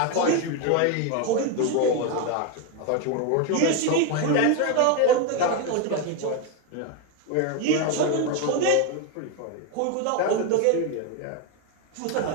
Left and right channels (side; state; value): both; different; correlation 0.02